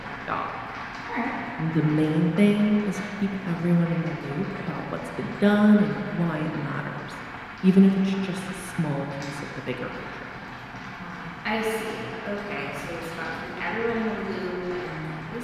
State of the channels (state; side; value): identical; both; correlation 1.00